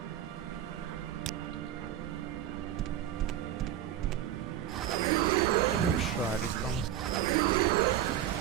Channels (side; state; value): left; quieter; 11.1 dB